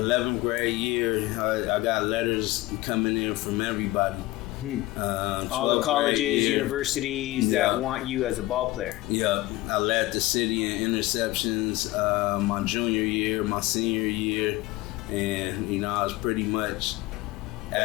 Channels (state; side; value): quieter; right; 18.8 dB